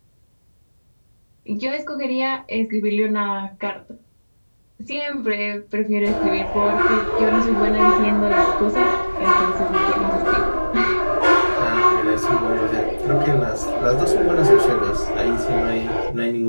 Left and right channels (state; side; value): inverted; both; correlation -1.00